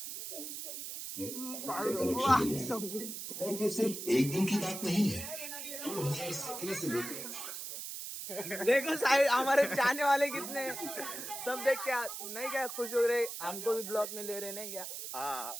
वाह, और वो सिर्फ एक दिन की बात नहीं है 2017 से लेकर देखो साहिब हमारे चाहने वाले कितने हैं। सब देख क्या नहीं क्या खुश हो रहे, हमको भी ब्लॉग में ले रहे नहीं क्या, हाँ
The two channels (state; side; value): noise; right; hiss, 7 dB below the sound